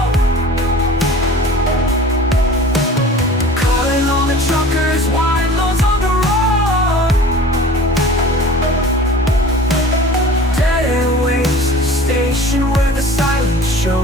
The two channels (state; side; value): normal; both; correlation 0.43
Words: Calling all the truckers, YMOs on the road. Dead airwaves, a station where the silence show.